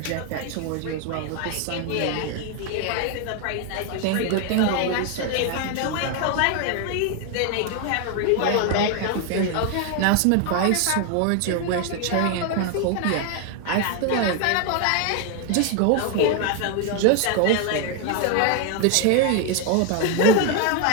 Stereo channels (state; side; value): different; both; correlation 0.01